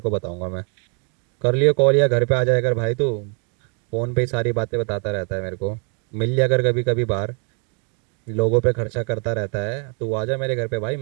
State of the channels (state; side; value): quieter; left; 39.8 dB